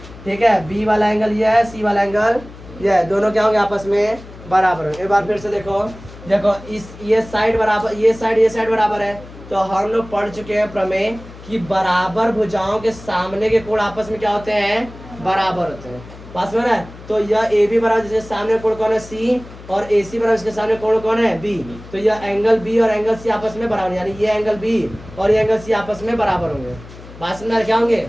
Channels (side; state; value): left; noise; hum, 17 dB below the sound